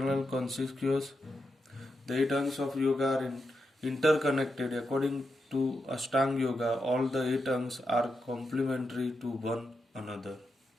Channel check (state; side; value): normal; both; correlation 0.86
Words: consciousness. The eight angs of yoga are interconnected. According to Ashtanga Yoga, all the eight angs are complementary to one another.